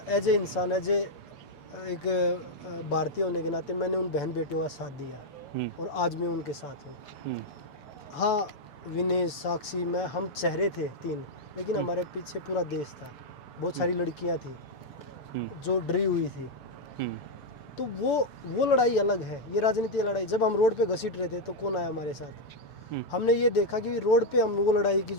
एज ए इंसान, एज ए एक भारतीय होने के नाते मैंने उन बहन बेटियों का साथ दिया, और आज मैं उनके साथ हूँ। हाँ, विनेश, साक्षी, मैं, हम चेहरे थे 3, लेकिन हमारे पीछे पूरा देश था, बहुत सारी लड़कियाँ थी जो डरी हुई थी। तो वो लड़ाई अलग है, ये राजनीतिक लड़ाई। जब हम रोड पे घसीट रहे थे तो कौन आया हमारे साथ? हमने ये देखा कि रोड पे हम वो लड़ाई की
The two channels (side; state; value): right; late; 6.9 ms